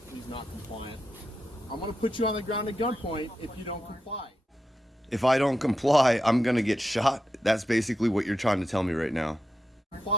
He's not compliant. I'm going to put you on the ground at gunpoint if you don't comply. If I don't comply, I'm gonna get shot. That's basically what you're trying to tell me right now.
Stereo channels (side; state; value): both; normal; correlation 0.88